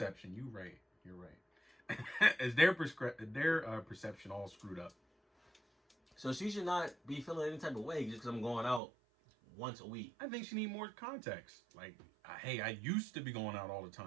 You're right. It's their perception all screwed up. So she should not be feeling any type of way just because I'm going out once a week. I think she need more context. Like, hey, I used to be going out all the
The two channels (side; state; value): left; drops out; at 8.8 s